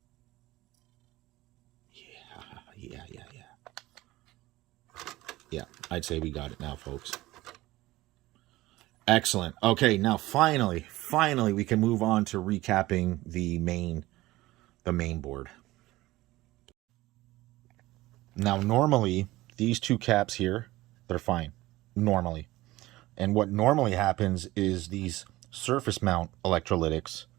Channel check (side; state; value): left; quieter; 18.1 dB